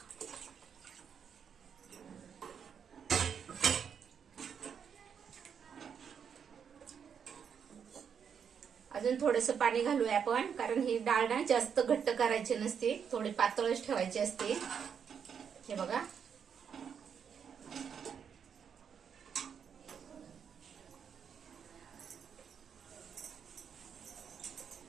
अजून थोडंसं पाणी घालूया आपण, कारण ही डाळ ना जास्त घट्ट करायची नसते, थोडी पातळच ठेवायची असते. हे बघा,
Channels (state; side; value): quieter; left; 7.3 dB